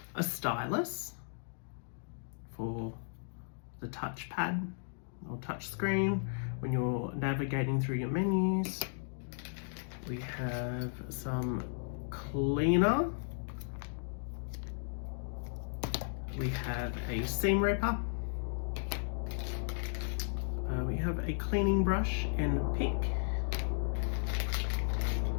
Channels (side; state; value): right; silent; digital silence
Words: a stylus for the touchpad or touch screen when you're navigating through your menus. We have some cleaner. We have a seam ripper. We have a cleaning brush and pick.